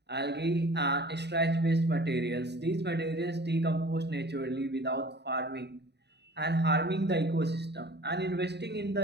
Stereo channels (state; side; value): late; left; 0.49 ms